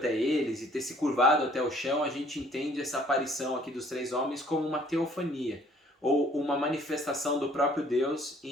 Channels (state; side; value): normal; both; correlation 0.58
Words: eles e ter se curvado até o chão, a gente entende essa aparição aqui dos 3 homens como uma teofania, ou uma manifestação do próprio Deus